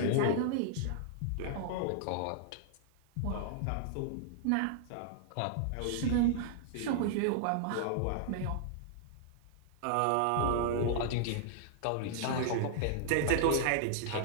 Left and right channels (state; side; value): different; both; correlation -0.01